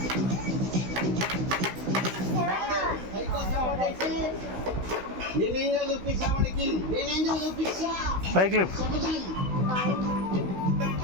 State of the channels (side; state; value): left; late; 16 ms